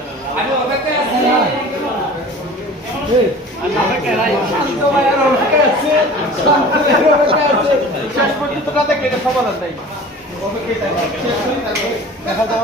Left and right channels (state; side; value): normal; both; correlation 0.41